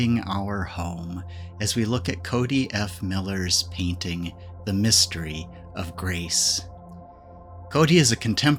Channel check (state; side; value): identical; both; correlation 1.00